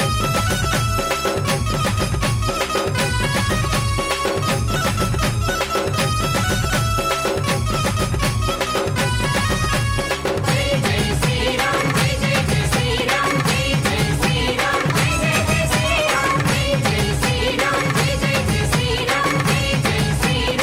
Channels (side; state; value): both; identical; correlation 1.00